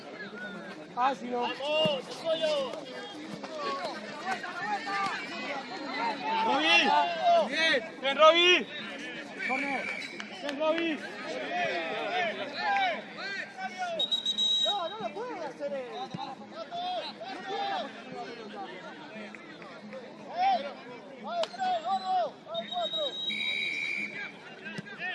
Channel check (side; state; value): both; identical; correlation 1.00